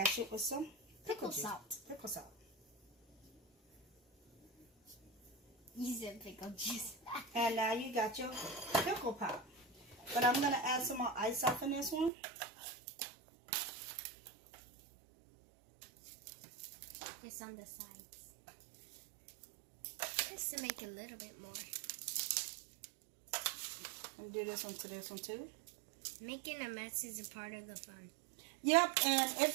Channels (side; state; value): left; drops out; at 12.1 s